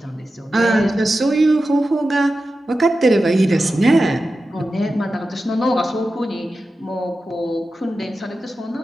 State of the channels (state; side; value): normal; both; correlation 0.92